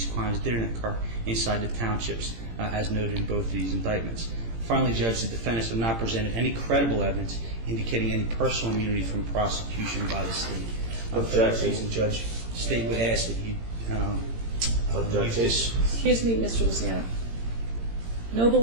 crimes didn't occur inside the townships, as noted in both of these indictments. Finally, Judge, the defendants have not presented any credible evidence indicating any personal immunity from prosecution by the state. For that reason, Judge, the state would ask that you use this. Excuse me, Mr. Luciano.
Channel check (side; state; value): left; late; 18 ms